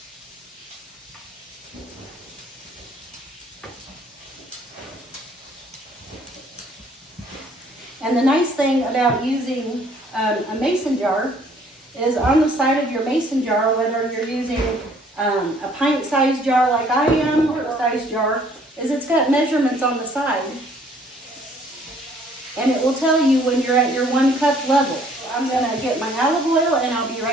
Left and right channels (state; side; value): normal; both; correlation 0.60